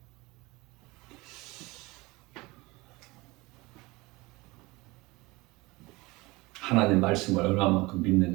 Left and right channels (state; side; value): quieter; left; 22.6 dB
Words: 하나님 말씀을 얼마만큼